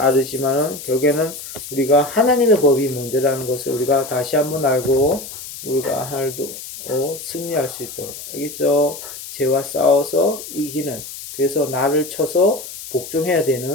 결국에는 우리가 하나님의 법이 먼저라는 것을 우리가 다시 한번 알고 우리가 하늘도 승리할 수 있도록. 알겠죠? 죄와 싸워서 이기는, 그래서 나를 쳐서 복종해야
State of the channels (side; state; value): left; noise; hiss, 12 dB below the sound